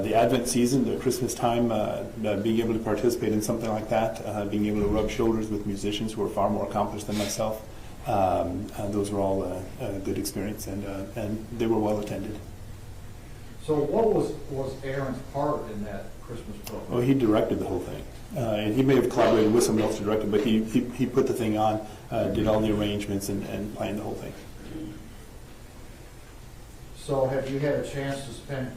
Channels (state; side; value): identical; both; correlation 1.00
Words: Advent season, the Christmas time, being able to participate in something like that, being able to rub shoulders with musicians who are far more accomplished than myself, those were all a good experience, and they were well attended. So what was Aaron's part in that Christmas program? Well, he directed the whole thing, and he may have collaborated with someone else to direct it, but he put the thing on. did all the arrangements and planned the whole thing. So have you had a chance to spend